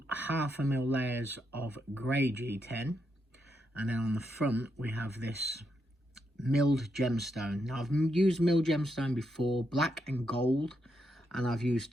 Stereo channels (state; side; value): normal; both; correlation 0.81